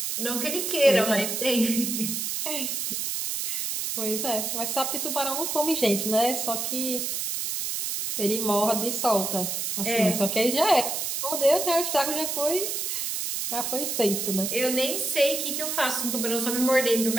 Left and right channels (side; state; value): right; noise; hiss, 2 dB below the sound